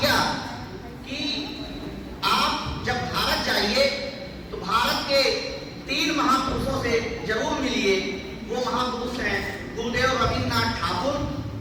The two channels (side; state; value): both; identical; correlation 1.00